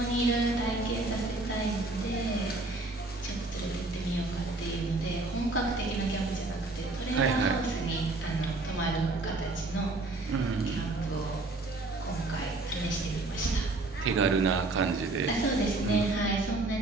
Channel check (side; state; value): left; quieter; 3.1 dB